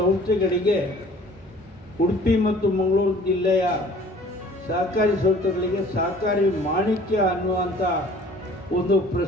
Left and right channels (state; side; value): normal; both; correlation 0.51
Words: ಉಡುಪಿ ಮತ್ತು ಮಂಗಳೂರು ಜಿಲ್ಲೆಯ ಸಹಕಾರಿ ಸಂಸ್ಥೆಗಳಿಗೆ ಸಹಕಾರಿ ಮಾಣಿಕ್ಯ ಅನ್ನುವಂಥ ಒಂದು